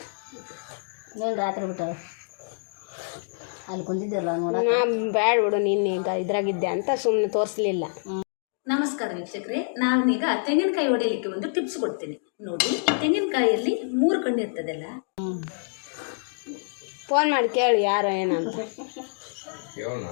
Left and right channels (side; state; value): right; silent; digital silence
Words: ನೀನು ರಾತ್ರಿ ಬಿಟ್ಟಾರ ಅಲ್ಲಿ ಕುಂತಿದ್ದಲ್ಲ. ಬ್ಯಾಡ ಬಿಡು, ನೀನು ಈಗ ಇದ್ರಾಗಿದ್ದೆ ಅಂತ ಸುಮ್ಮನೆ ತೋರಿಸ್ಲಿಲ್ಲ. ನಮಸ್ಕಾರ ವೀಕ್ಷಕರೇ, ನಾನೀಗ ತೆಂಗಿನಕಾಯಿ ಹೊಡೆಯಲಿಕ್ಕೆ ಒಂದು ಟಿಪ್ಸ್ ಕೊಡ್ತೀನಿ ನೋಡಿ. ತೆಂಗಿನಕಾಯಿಯಲ್ಲಿ 3 ಕಣ್ಣು ಇರ್ತದಲ್ಲ. ಫೋನ್ ಮಾಡಿ ಕೇಳು ಯಾರು ಏನಂತ.